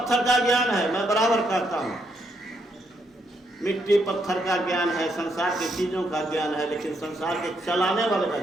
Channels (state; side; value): normal; both; correlation 0.76